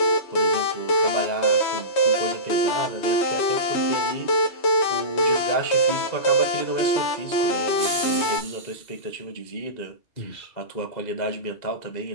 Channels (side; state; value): right; late; 2.0 ms